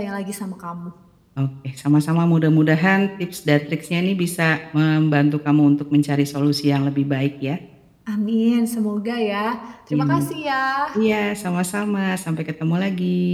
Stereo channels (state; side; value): identical; both; correlation 1.00